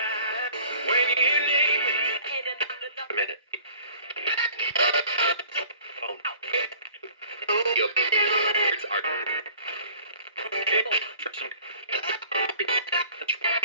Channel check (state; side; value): inverted; both; correlation -0.50